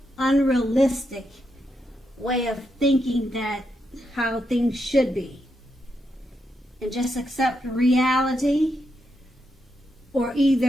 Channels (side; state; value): both; normal; correlation 0.83